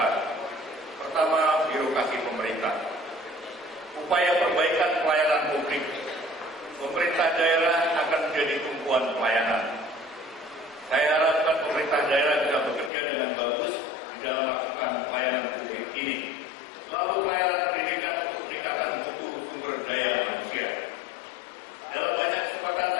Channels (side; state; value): right; drops out; at 12.9 s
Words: Pertama, birokrasi pemerintah. Upaya perbaikan pelayanan publik. Pemerintah daerah akan menjadi tumpuan pelayanan. Saya harapkan pemerintah daerah bisa bekerja dengan bagus di dalam melakukan pelayanan publik ini. Lalu pelayanan pendidikan untuk peningkatan mutu sumber daya manusia. Dalam banyak kesempatan